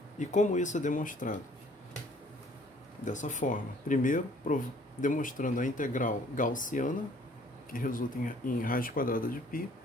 E como isso é demonstrado? Dessa forma. Primeiro, demonstrando a integral gaussiana, que resulta em raiz quadrada de π,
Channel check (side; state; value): both; normal; correlation 0.58